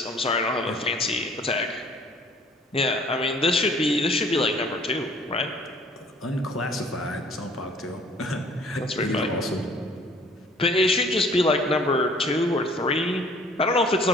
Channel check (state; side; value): normal; both; correlation 0.55